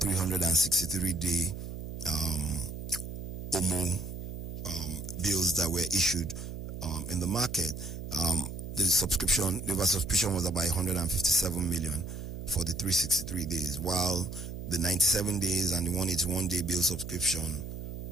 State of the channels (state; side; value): noise; right; hum, 8 dB below the sound